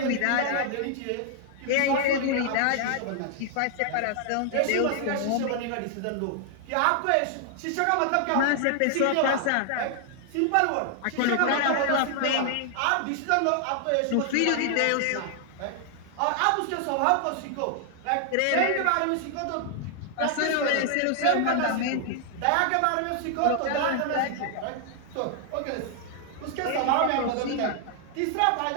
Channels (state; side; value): different; both; correlation 0.00